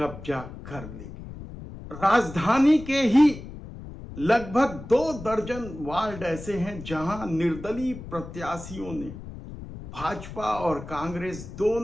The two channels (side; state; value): left; noise; rumble, 12 dB below the sound